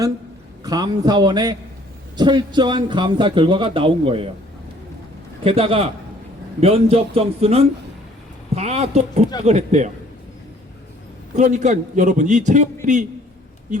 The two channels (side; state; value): both; normal; correlation 0.58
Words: 감사원의 철저한 감사 결과가 나온 거예요. 게다가 면접 점수는 다 또 조작을 했대요. 그러니까 여러분 이 채용 비리